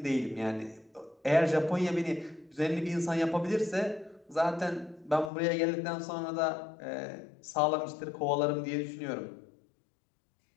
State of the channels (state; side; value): drops out; right; at 5.3 s